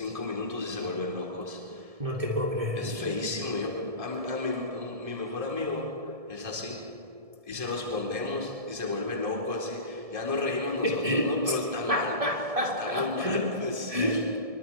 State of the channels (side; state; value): left; late; 1.7 ms